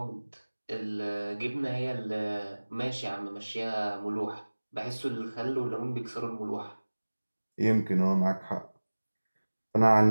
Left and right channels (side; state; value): both; inverted; correlation -1.00